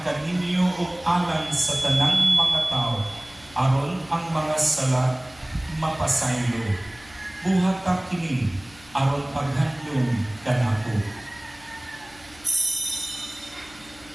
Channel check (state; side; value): noise; left; hum, 25 dB below the sound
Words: kaninyo ug alang sa tanang mga tao aron ang mga sala mapasaylo. Buhat ka kini aron paghandom kanako.